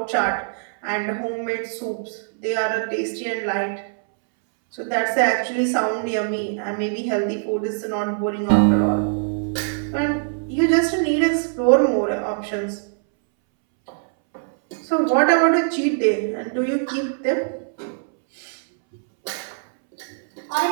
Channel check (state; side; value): silent; left; 63 dB below the other